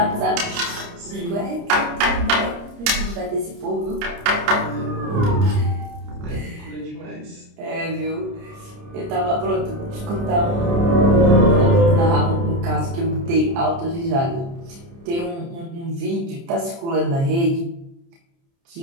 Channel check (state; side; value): late; left; 29 ms